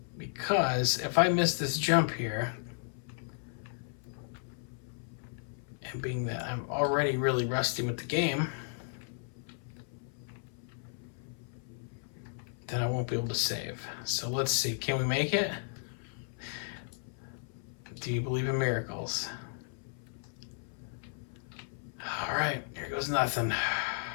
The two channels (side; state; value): right; silent; 55 dB below the other